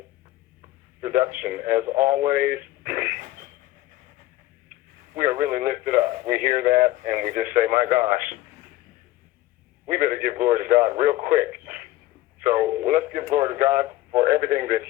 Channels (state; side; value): quieter; right; 16.1 dB